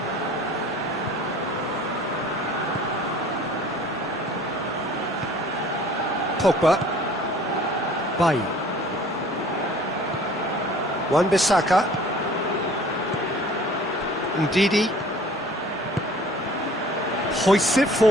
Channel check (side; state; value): both; normal; correlation 0.50